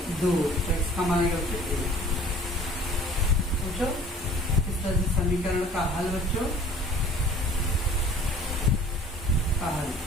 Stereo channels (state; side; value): normal; both; correlation 0.49